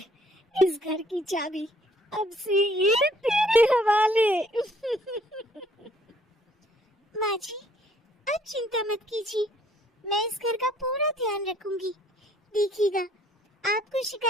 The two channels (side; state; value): both; normal; correlation 0.62